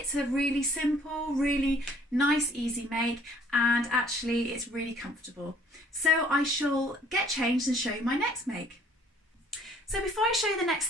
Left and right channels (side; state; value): both; normal; correlation 0.58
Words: a really simple, really nice, easy make, and actually it's really comfortable. So I shall get changed and show you my next make. So before I show you the next